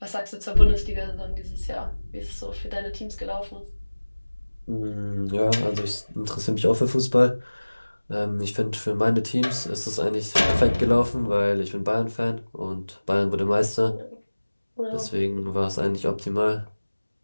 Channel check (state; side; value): inverted; both; correlation -1.00